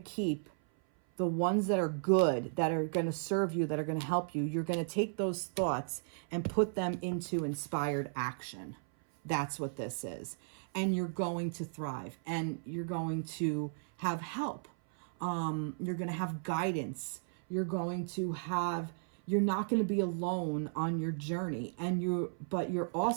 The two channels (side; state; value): left; silent; 55 dB below the other